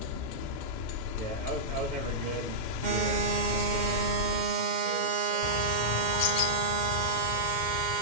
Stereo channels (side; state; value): right; late; 2.1 ms